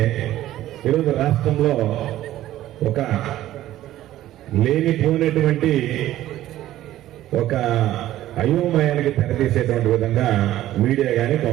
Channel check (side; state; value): left; quieter; 13.9 dB